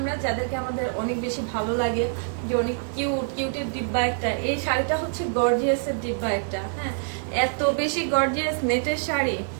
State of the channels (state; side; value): silent; left; digital silence